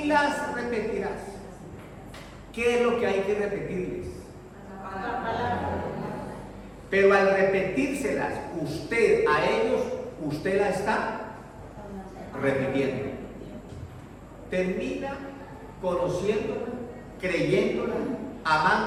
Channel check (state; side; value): identical; both; correlation 1.00